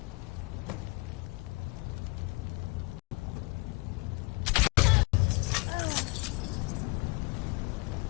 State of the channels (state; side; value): quieter; right; 26.3 dB